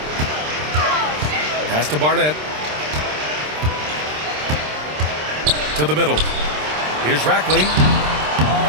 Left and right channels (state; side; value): late; left; 26 ms